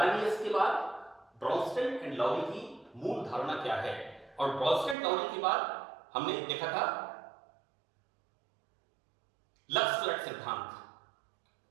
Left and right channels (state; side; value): drops out; left; at 5.0 s